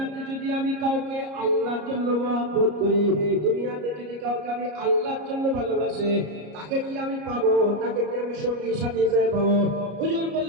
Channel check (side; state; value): left; late; 33 ms